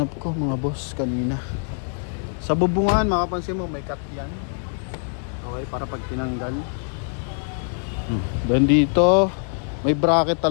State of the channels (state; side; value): silent; right; 63 dB below the other